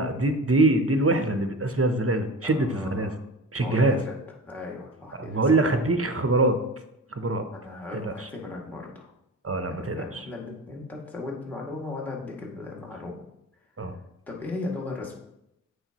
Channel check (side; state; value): both; normal; correlation 0.32